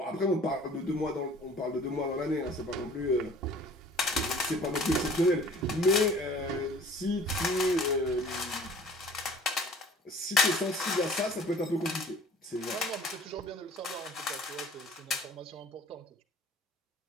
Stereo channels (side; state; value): both; normal; correlation 0.49